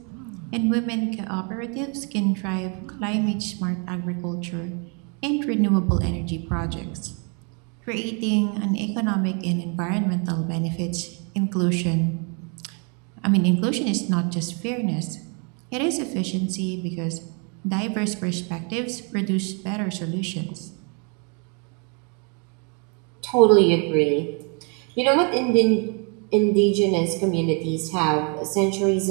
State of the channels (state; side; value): quieter; left; 36.4 dB